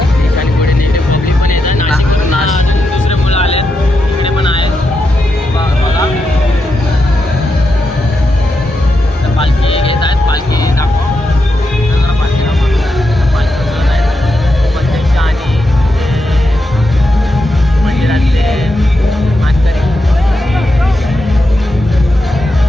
आणि पुढे नेते पब्लिक पण येत आहे. नाशिकवरून अजून दुसरे मुलं आले इकडे पण आहेत. बघा तर पालखी घेत आहेत. पालखी दाखवा, पालखी उचलत आहेत प्रत्यक्ष. आणि मंदिरातले मानकरी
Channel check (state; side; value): normal; both; correlation 0.86